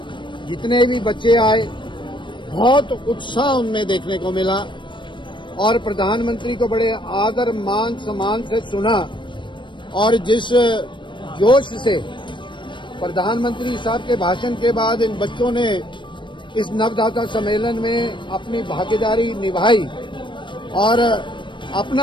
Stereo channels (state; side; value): late; right; 0.23 ms